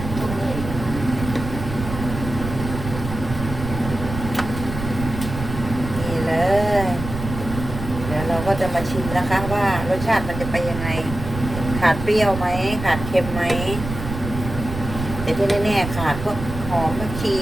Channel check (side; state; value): right; noise; rumble, 7 dB below the sound